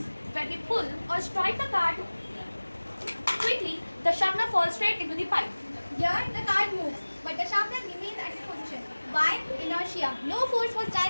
When we pull or strike the card quickly, the sharpener falls straight into the pipe. Here, the card moves, but the sharpener remains at its position. Why? Inertia. No force was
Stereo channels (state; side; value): inverted; both; correlation -1.00